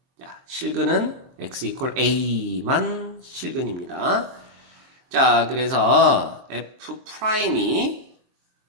자, 실근은 x 이퀄 a만 실근입니다. 자, 그래서 f'이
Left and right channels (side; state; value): left; late; 23 ms